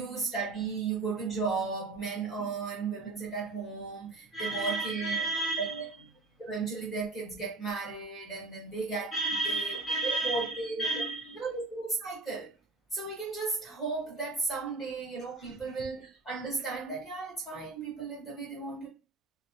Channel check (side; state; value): left; quieter; 3.4 dB